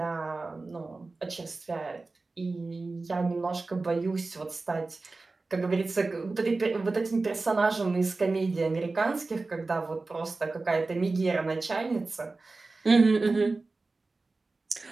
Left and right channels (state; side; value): quieter; left; 3.6 dB